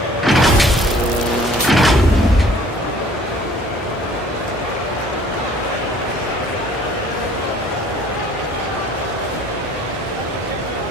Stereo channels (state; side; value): normal; both; correlation 0.54